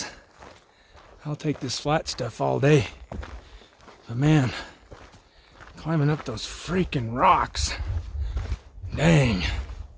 I'll take this flat stuff all day, but man, climbing up those freaking rocks, dang.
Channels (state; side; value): identical; both; correlation 1.00